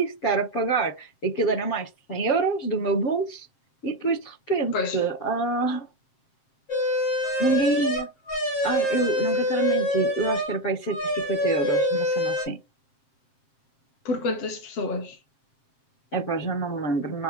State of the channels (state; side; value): late; right; 7.5 ms